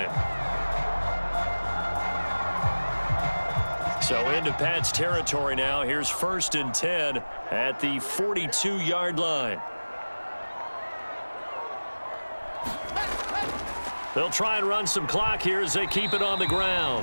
So into Pat's territory now. Here's 1st and 10 at the 42-yard line. They'll try and run some clock here as they keep it on the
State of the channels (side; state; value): both; inverted; correlation -1.00